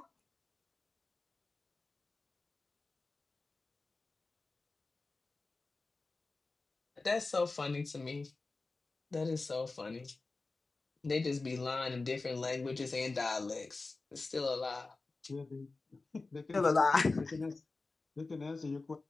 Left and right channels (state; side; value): quieter; right; 3.6 dB